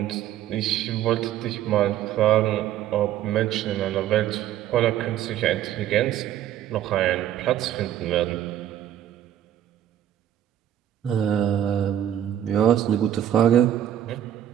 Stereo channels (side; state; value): left; quieter; 11.1 dB